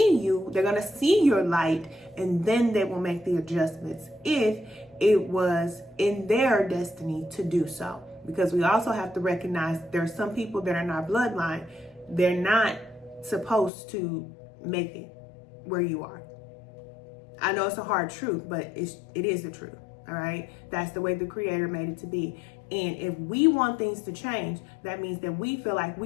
you. They're going to see your light, and then they will make the adjustments if it was in their destiny to do so. Because we also have to recognize there are some people that are in our bloodline. They're not supposed to make it where you are. I know it's a hard truth, but it is the truth. All right. That's the way the Creator made it to be. And if we want things to change, that means that we feel like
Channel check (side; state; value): right; drops out; at 13.7 s